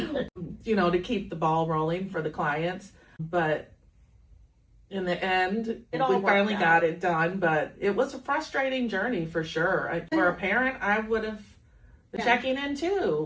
keep the ball rolling for the clients. But in the end, we finally got it done. But it was a frustrating journey for sure. For a parent, I would have checking in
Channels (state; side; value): identical; both; correlation 1.00